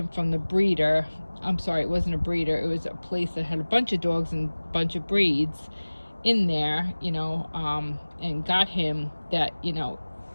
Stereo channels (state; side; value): inverted; both; correlation -1.00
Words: from the breeder, I'm sorry, it wasn't a breeder, it was a place that had a bunch of dogs and a bunch of breeds in there, you know, and got him, that, you know,